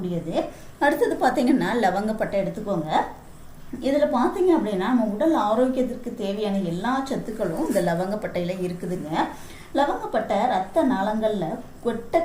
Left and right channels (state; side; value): identical; both; correlation 1.00